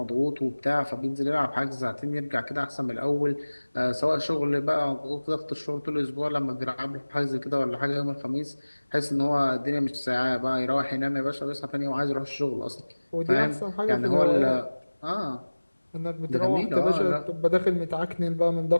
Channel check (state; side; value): inverted; both; correlation -1.00